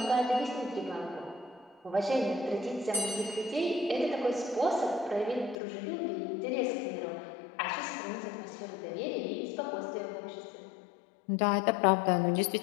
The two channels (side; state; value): right; drops out; at 5.6 s